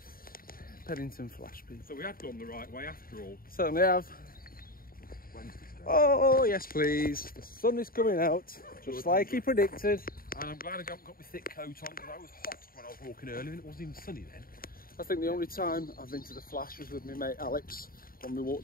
Pennington Flash, people. So we had gone the right way after all. Certainly have. Wednesday's day. Oh, yes please. The sun is coming out. Just like he predicted. And I'm glad I haven't got my thick coat on because I was hot when I was walking earlier and it wasn't even sunny then. I think the only time I've been to the Flash was with my mate Alex when we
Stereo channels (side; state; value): right; late; 0.42 ms